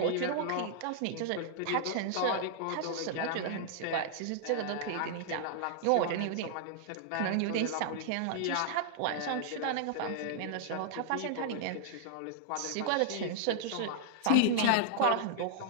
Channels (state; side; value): different; both; correlation -0.01